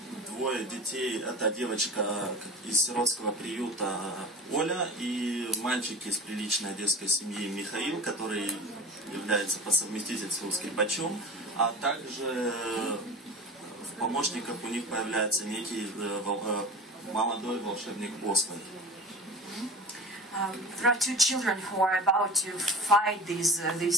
двое детей. Это девочка из сиротского приюта Оля и мальчик из приличной одесской семьи Михаил, который является по совместительству скрипачом, а также в помощниках у них появляется некий молодой волшебник Освальд. There are two children who are about to fight these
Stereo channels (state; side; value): normal; both; correlation 0.35